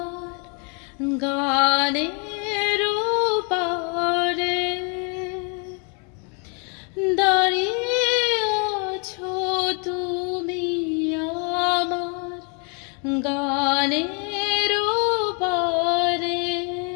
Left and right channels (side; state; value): right; quieter; 37.0 dB